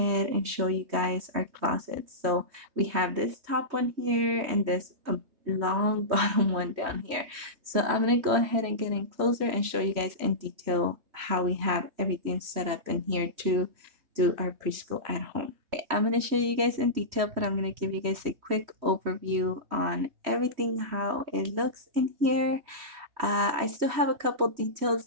and show you guys our closets. So we have this top one here and this long bottom one down here. So I'm gonna go ahead and get in closer and show you guys in detail how we have everything set up in here to do our preschool at home. Okay, I'm gonna show you guys in detail, but I'm gonna give you guys a quick overview on everything, how it looks in here. I still have a couple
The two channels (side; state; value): left; late; 3.1 ms